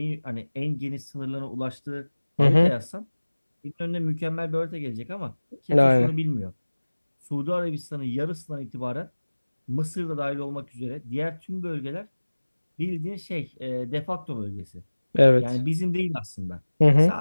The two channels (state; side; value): inverted; both; correlation -1.00